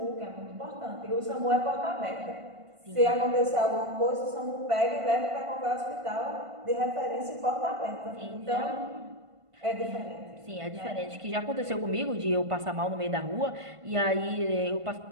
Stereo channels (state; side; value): late; left; 1.5 ms